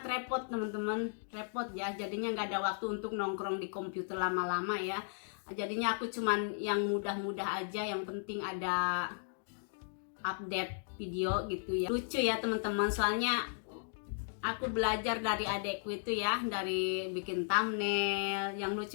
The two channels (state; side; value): silent; right; digital silence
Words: repot teman-teman, repot ya. Jadinya nggak ada waktu untuk nongkrong di komputer lama-lama ya. Jadinya aku cuman yang mudah-mudah aja, yang penting ada update video gitu ya. Lucu ya teman-teman, soalnya aku belajar dari adekku itu ya, dari bikin thumbnail. Yang